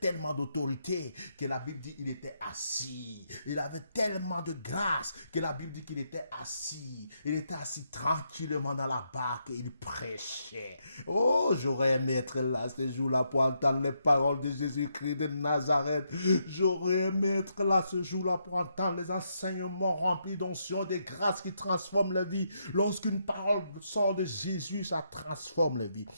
d'autorité que la Bible dit qu'il était assis. Il avait tellement de grâce que la Bible dit qu'il était assis. Il était assis tranquillement dans la barque et il prêchait. Oh, j'aurais aimé être là ce jour-là pour entendre les paroles de Jésus-Christ de Nazareth. J'aurais aimé être là ce jour-là pour entendre les enseignements remplis d'onction, de grâce qui transforment la vie. Lorsqu'une parole sort de Jésus, ça transforme la vie.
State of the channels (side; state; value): both; inverted; correlation -0.79